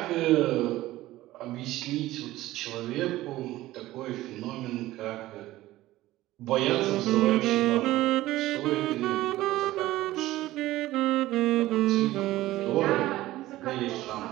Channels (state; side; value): quieter; left; 16.4 dB